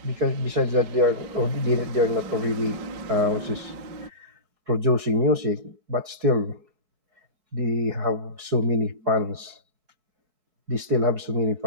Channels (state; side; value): late; left; 4.7 ms